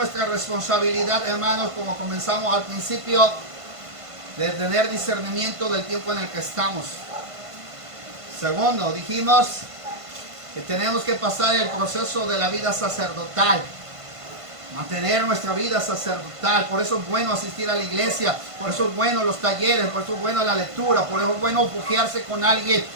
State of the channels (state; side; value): late; left; 1.5 ms